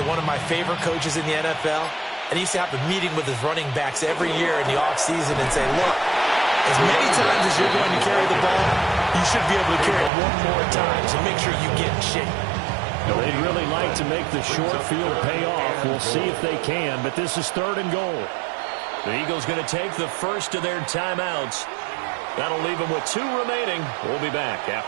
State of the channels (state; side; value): drops out; left; at 10.1 s